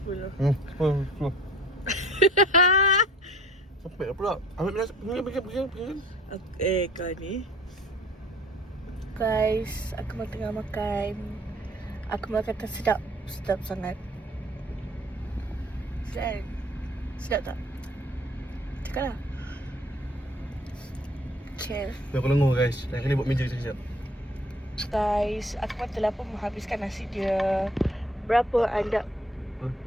Sampai pula. Ambil pergi. Kau ni. Guys, aku tengah makan. Aku makan tak sedap. Sedap sangat. Sedap. Sedap tak? Cakap lah. Okay. Aku lengur guys. Lain kali buat meja sekejap. Guys, aku telah pun menghabiskan nasi dia. Berapa anda?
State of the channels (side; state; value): both; normal; correlation 0.53